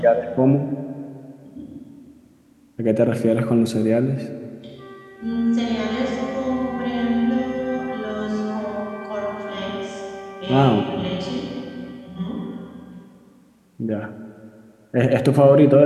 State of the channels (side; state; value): both; identical; correlation 1.00